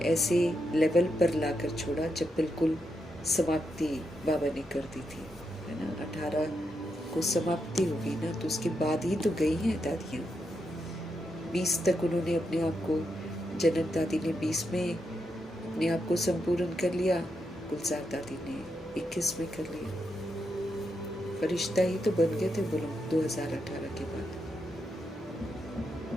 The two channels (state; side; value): normal; both; correlation 0.83